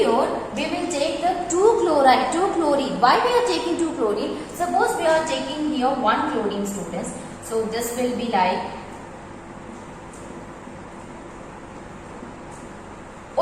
we will take the 2 chlorine. Why we are taking 2 chlorine? Suppose we are taking here 1 chlorine, students. So this will be like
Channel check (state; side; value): identical; both; correlation 1.00